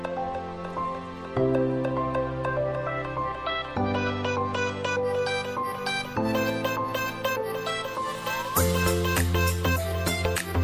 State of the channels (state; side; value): identical; both; correlation 1.00